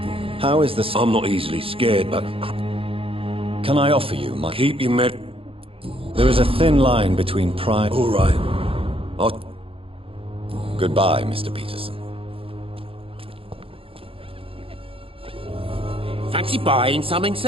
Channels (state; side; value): late; left; 0.27 ms